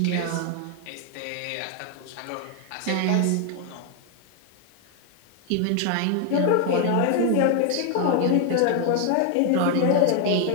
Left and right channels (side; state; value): both; different; correlation 0.00